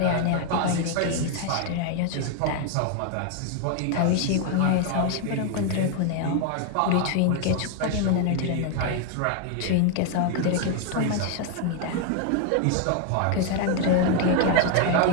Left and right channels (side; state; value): both; different; correlation 0.00